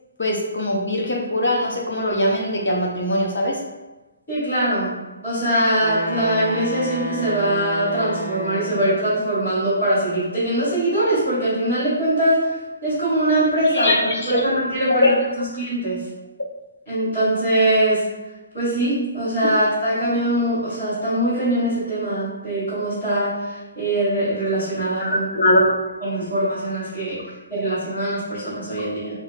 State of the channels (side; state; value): both; inverted; correlation -0.50